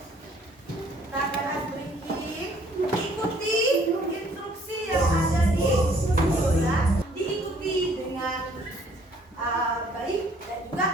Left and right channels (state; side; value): normal; both; correlation 0.60